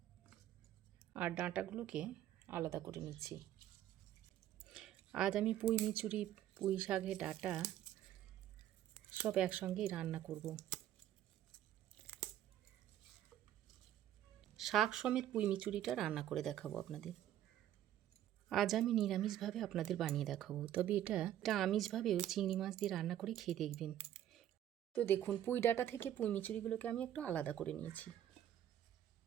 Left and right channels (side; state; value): left; quieter; 11.8 dB